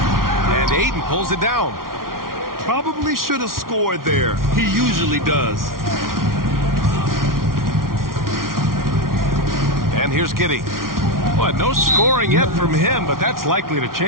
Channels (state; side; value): late; left; 0.92 ms